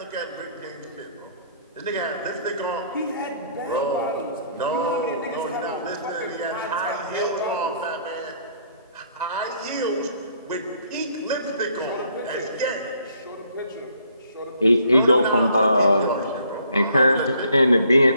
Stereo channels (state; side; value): inverted; both; correlation -0.63